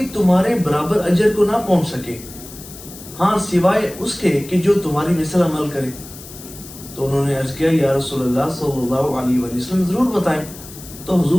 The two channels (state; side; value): noise; left; hiss, 16 dB below the sound